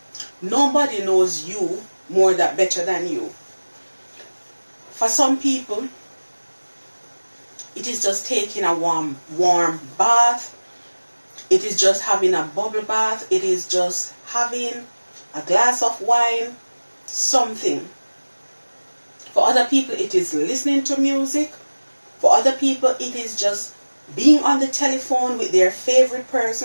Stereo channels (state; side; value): inverted; both; correlation -1.00